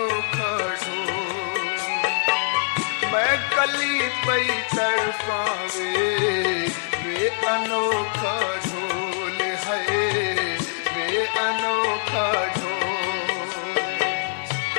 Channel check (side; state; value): right; silent; 63 dB below the other